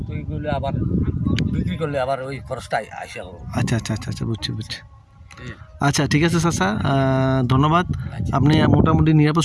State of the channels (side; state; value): both; identical; correlation 1.00